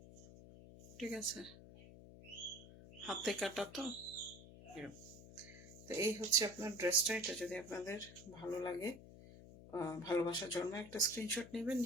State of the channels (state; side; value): noise; left; hum, 17 dB below the sound